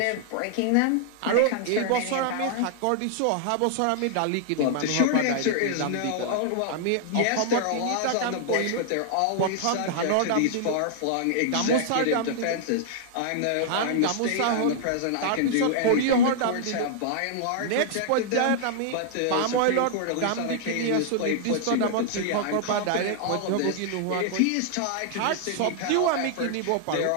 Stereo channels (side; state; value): both; different; correlation -0.01